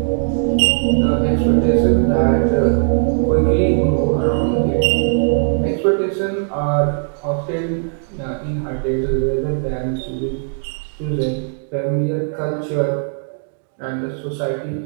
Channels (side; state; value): left; silent; digital silence